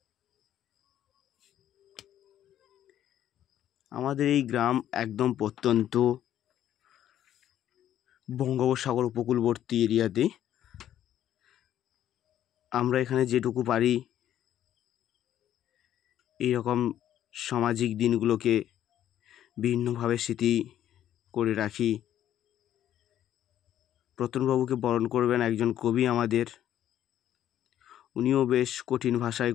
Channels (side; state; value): right; quieter; 11.4 dB